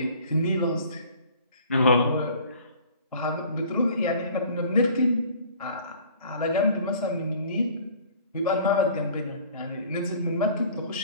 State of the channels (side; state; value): both; inverted; correlation -0.50